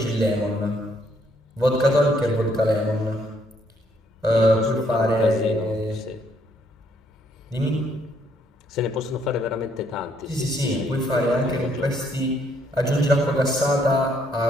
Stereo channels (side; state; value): both; normal; correlation 0.69